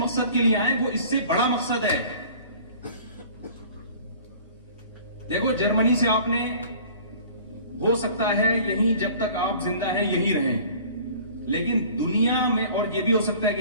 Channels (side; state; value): both; inverted; correlation -0.47